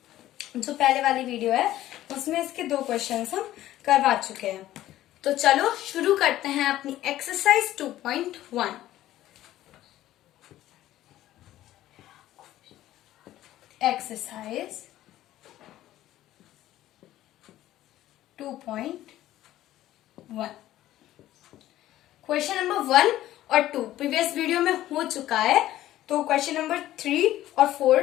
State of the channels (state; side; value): quieter; right; 14.1 dB